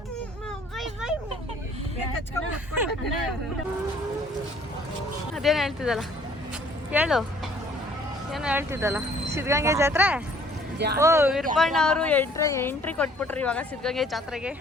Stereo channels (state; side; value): normal; both; correlation 0.58